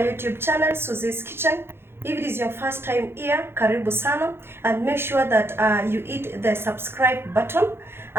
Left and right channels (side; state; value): left; late; 0.11 ms